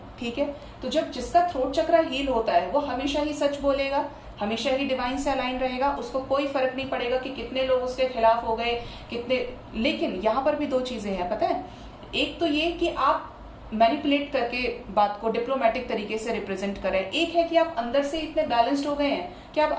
ठीक है। तो जब जिसका थ्रोट चक्र हील होता है वो हमेशा ही सच बोलेगा, हमेशा ही डिवाइन से अलाइन रहेगा, उसको कोई फर्क नहीं पड़ेगा कि कितने लोग उसके खिलाफ हो गए, कितने। लेकिन यहाँ पर भी दो चीजें हैं, पता है। एक तो ये कि आप मैनिपुलेट करके बात को डिप्लोमेटिक तरीके से रिप्रेजेंट करें, एक है कि आप अंदर से इतने बैलेंस्ड हो गए हैं कि आप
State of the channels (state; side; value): identical; both; correlation 1.00